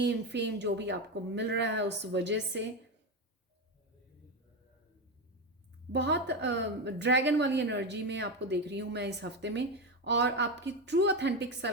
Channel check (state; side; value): normal; both; correlation 0.14